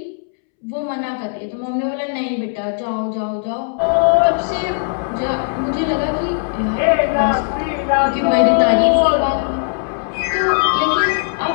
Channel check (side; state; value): right; silent; 67 dB below the other